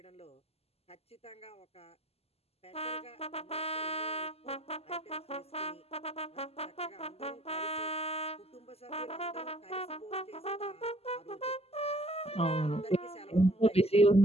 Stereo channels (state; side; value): late; right; 0.29 ms